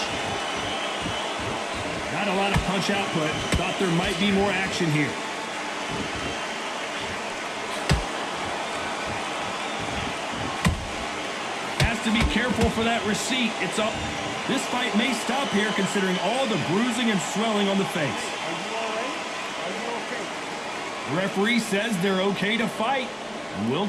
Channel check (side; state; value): both; identical; correlation 1.00